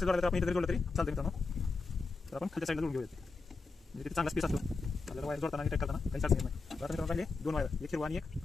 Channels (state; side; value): quieter; right; 4.1 dB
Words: तर आपण इथे जोडलं तरी चालतं मित्रांनो. तर आपण खालच्या साईडला जोडून घेऊया, म्हणजे तिथे चांगला स्पेस असतो आपल्याला वायर जोडताना आणि टाईट करताना काही अडचण येत नाही. तर आता मित्रांनो, राहिले 2 वायर, एक हिरवा आणि एक